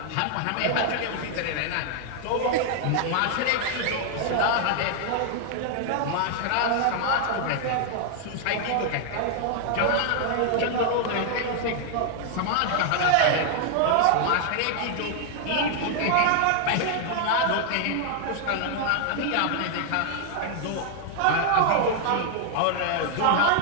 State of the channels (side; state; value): both; different; correlation 0.00